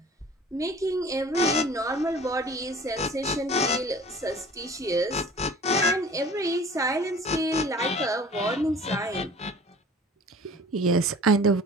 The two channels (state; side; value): normal; both; correlation 0.46